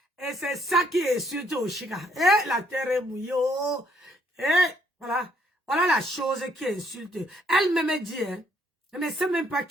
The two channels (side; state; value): both; normal; correlation 0.69